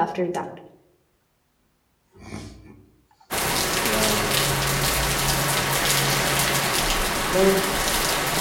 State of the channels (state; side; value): identical; both; correlation 1.00